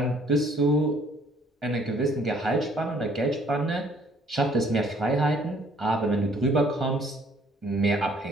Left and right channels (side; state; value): both; normal; correlation 0.61